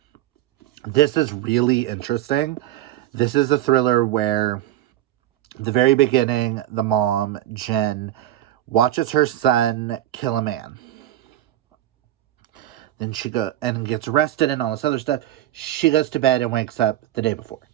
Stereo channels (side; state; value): left; quieter; 13.5 dB